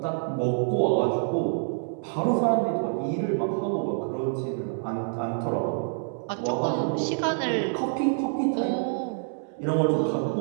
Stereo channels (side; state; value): left; silent; digital silence